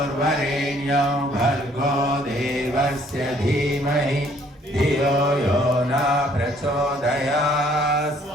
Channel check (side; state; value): both; normal; correlation 0.62